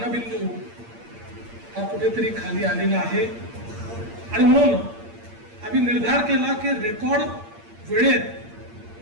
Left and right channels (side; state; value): left; late; 8.7 ms